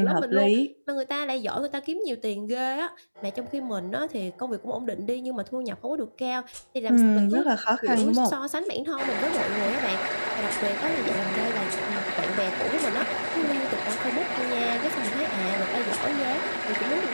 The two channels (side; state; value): both; inverted; correlation -1.00